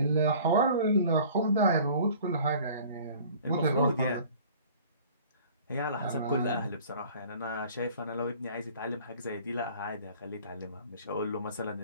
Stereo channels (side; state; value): both; inverted; correlation -0.48